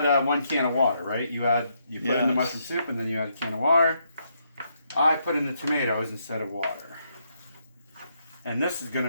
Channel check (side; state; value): both; inverted; correlation -0.77